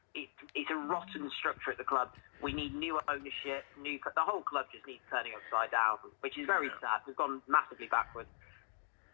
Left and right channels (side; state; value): right; silent; digital silence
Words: a rotten structure at the club. We need new ownership, the whole club just needs turning upside down, which is very sad. We've gone massively backwards.